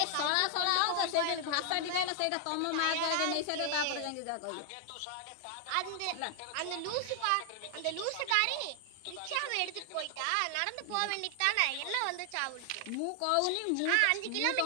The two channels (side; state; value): both; different; correlation 0.00